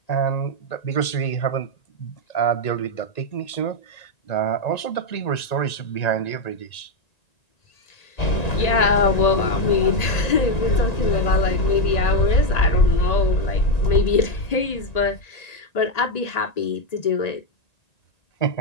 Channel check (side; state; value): right; late; 1.9 ms